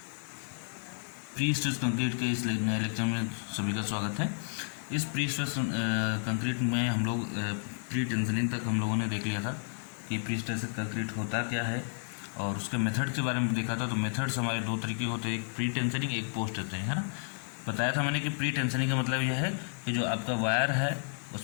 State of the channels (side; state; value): right; silent; 57 dB below the other